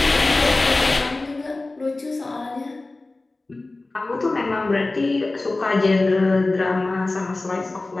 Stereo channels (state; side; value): quieter; right; 3.1 dB